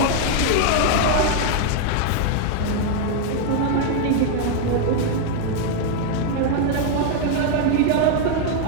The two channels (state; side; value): different; both; correlation 0.00